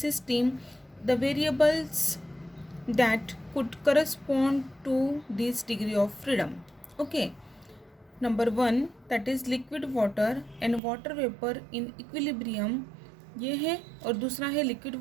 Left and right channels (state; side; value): drops out; left; at 10.8 s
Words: The variables that could correspond to this degree of freedom. Okay, number 1 that is liquid water and water vapor in equilibrium, ये है। और दूसरा है liquid